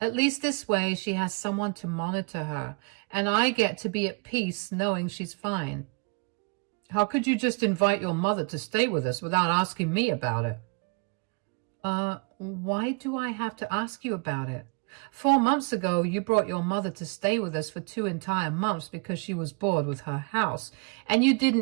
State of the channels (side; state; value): left; quieter; 33.6 dB